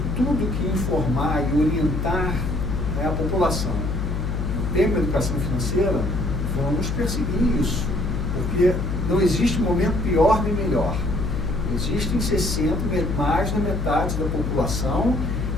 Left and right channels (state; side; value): noise; left; hum, 1 dB below the sound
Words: tudo que informar e orientar, né, a população no tema da educação financeira, vamos perseguir isso. Porque não existe momento pior nem melhor. Existem mais da metade da população